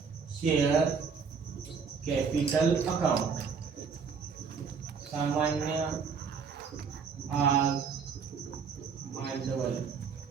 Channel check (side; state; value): left; quieter; 5.8 dB